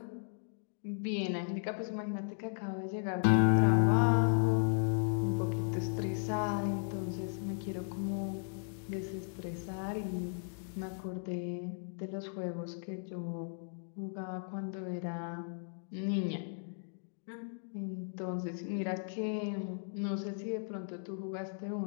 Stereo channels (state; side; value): silent; right; digital silence